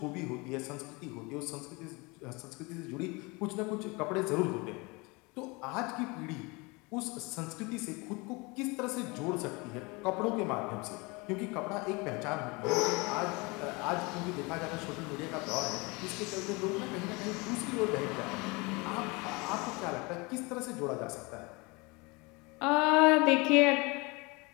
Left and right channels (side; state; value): right; quieter; 26.8 dB